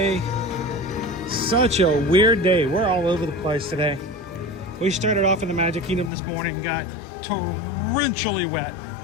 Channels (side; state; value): right; drops out; at 6.1 s